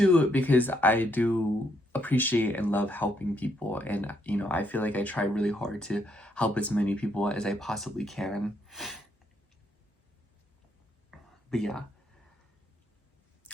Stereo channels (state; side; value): normal; both; correlation 0.74